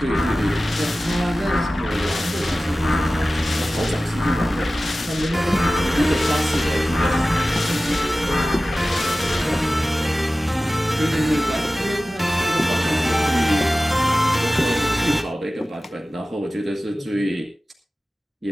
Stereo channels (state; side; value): normal; both; correlation 0.96